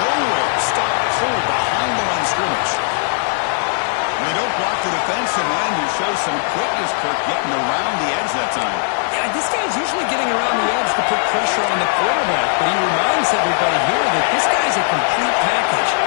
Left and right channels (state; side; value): silent; right; digital silence